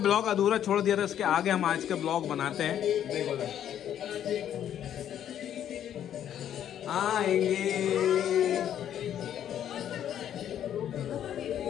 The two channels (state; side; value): quieter; right; 10.2 dB